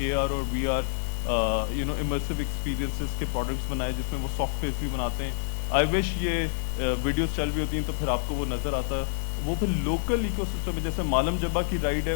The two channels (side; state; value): right; silent; digital silence